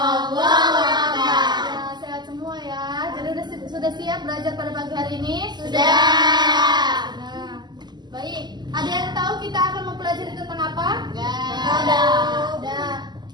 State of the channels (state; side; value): late; left; 0.21 ms